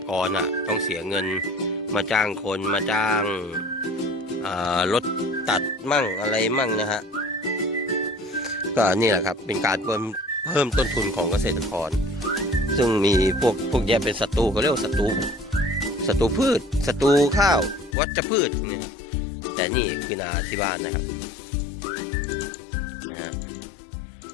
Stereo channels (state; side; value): drops out; right; at 17.9 s